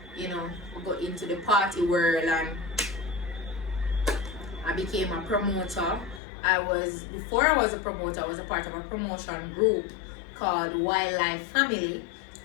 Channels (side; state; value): right; drops out; at 6.2 s